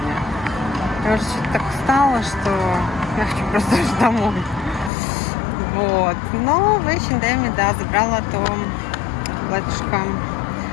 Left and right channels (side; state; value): right; drops out; at 4.9 s